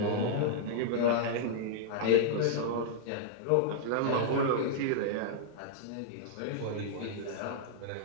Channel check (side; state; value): both; different; correlation -0.01